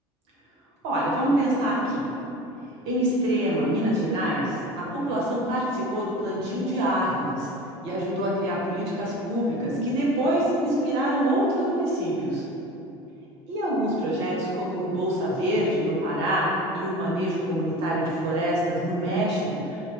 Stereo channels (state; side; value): normal; both; correlation 0.37